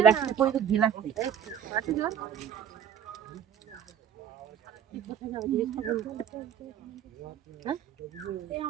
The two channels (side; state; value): left; quieter; 8.8 dB